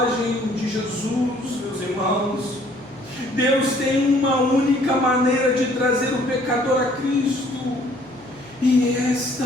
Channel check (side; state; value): left; noise; hum, 25 dB below the sound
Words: de Jesus, meus irmãos. Deus tem uma única maneira de trazer o pecador a Cristo, e esta